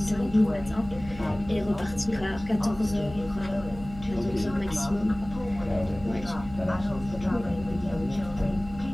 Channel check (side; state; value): right; noise; hum, 15 dB below the sound